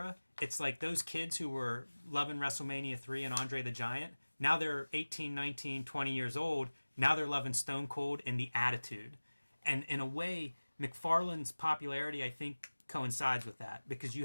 it's like those kids who were loving WrestleMania 3 and Andre the Giant, now they're 18, 19, 20 years old. Now they're loving Stone Cold and the Attitude. And in a way, McFarlane's popularity, I think, coincides with that. Because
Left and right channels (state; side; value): inverted; both; correlation -1.00